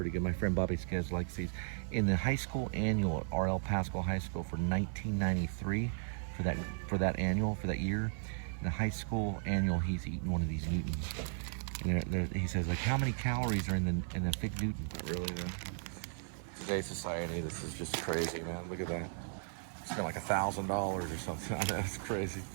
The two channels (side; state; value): left; silent; 54 dB below the other